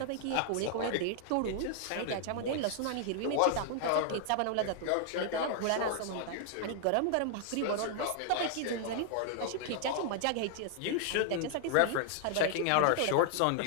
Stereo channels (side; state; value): both; different; correlation 0.00